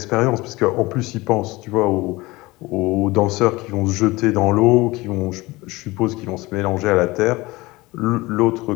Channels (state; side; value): quieter; right; 21.3 dB